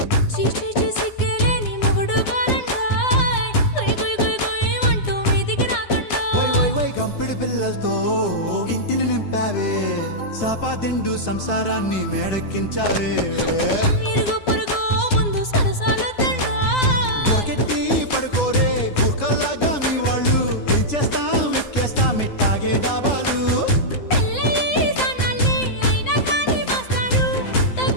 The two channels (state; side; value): late; right; 9.7 ms